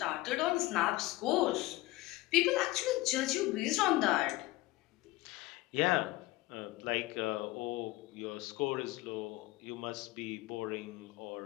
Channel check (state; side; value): quieter; right; 18.8 dB